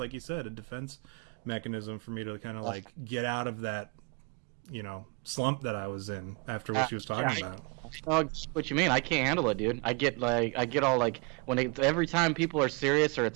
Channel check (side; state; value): left; quieter; 32.0 dB